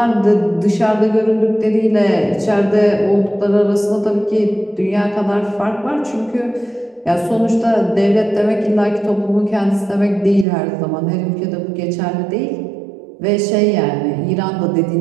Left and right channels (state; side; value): drops out; left; at 10.5 s